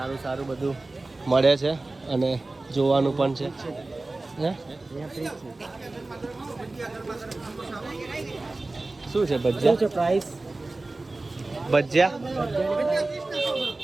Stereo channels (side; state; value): left; quieter; 3.1 dB